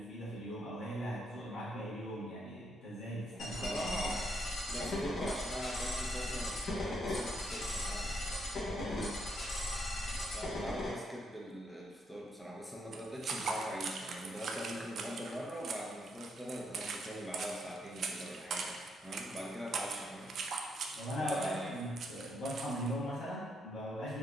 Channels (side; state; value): both; normal; correlation 0.76